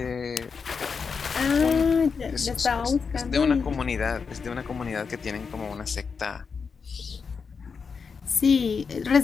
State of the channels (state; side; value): quieter; right; 5.5 dB